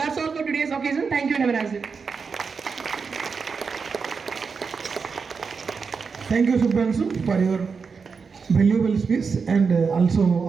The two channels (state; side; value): quieter; left; 5.4 dB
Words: all for today's occasion. Thank you and have a nice day. Thank you, Subhranshu, for your valuable speech and also